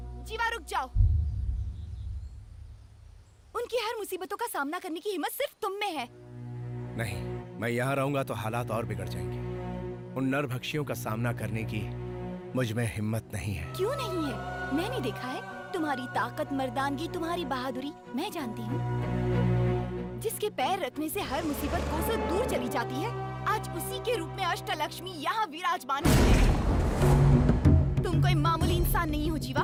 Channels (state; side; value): identical; both; correlation 1.00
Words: जीवा रुक जाओ। उनकी हर मुसीबतों का सामना करने की हिम्मत सिर्फ तुम में है। नहीं, मैं यहाँ रहूंगा तो हालात और बिगड़ जाएंगे। उन नरभक्षियों का सामना करने की मुझ में हिम्मत नहीं है। क्यों नहीं है? मैंने देखा है तुम्हारी ताकत, मर्दानगी, तुम्हारी बहादुरी मैं जानती हूँ। जिसके पैर रखने से हर मुसीबत कोसों दूर चली जाती है, आज उसी के रूप में अष्टलक्ष्मी यहाँ विराजमान है। तुम कोई मामूली इंसान नहीं हो जीवा।